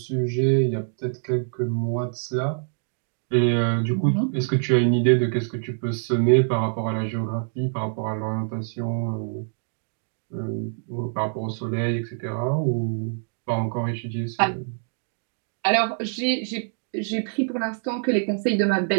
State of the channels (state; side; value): silent; left; 62 dB below the other